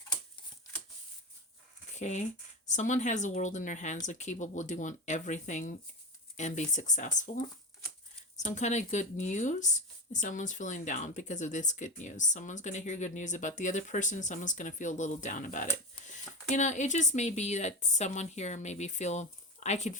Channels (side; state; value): both; normal; correlation 0.22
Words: Okay, someone has the world in their hands. They're capable of doing everything and be successful. Some kind of good news. Someone's feeling down because of this good news. Someone's going to hear good news about the other person. Someone's going to feel a little down about it. You know, it just may be that someone here maybe feel, I could